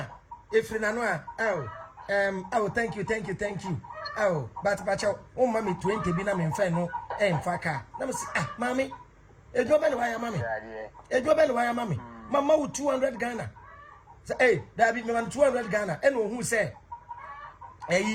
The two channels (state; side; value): identical; both; correlation 1.00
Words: if na no oh thank you oh but oh mommy 20 bi na me mfa no mfa ka na me say ah mami ejo be no waya mami mama 200 Ghana say hey that be me 200 Ghana and who say